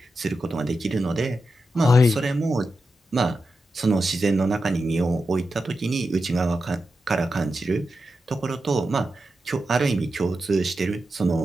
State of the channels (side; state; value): both; normal; correlation 0.89